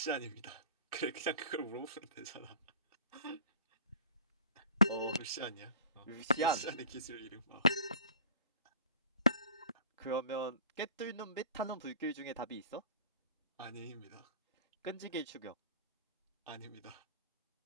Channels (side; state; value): both; inverted; correlation -0.46